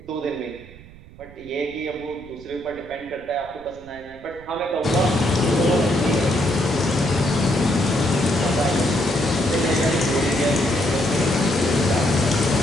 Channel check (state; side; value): noise; right; rumble, 20 dB below the sound